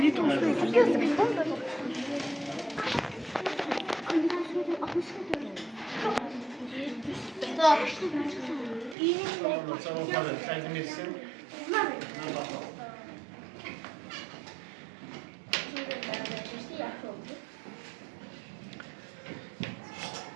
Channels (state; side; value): drops out; left; at 9.0 s